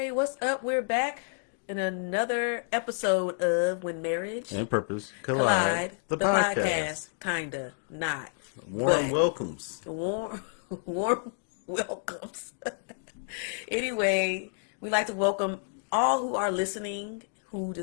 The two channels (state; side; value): silent; right; digital silence